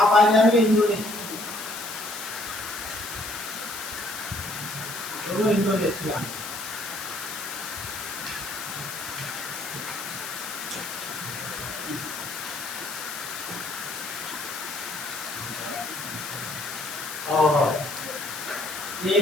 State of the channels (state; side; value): noise; left; hiss, 7 dB below the sound